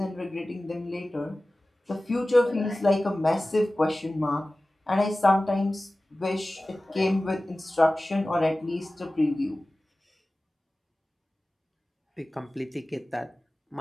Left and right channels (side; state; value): both; normal; correlation 0.97